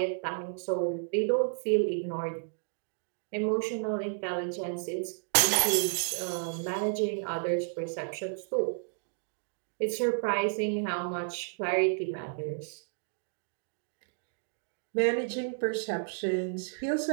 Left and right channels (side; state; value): left; silent; digital silence